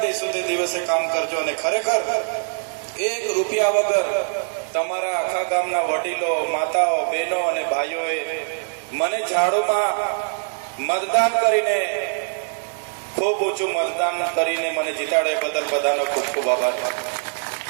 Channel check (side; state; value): left; silent; digital silence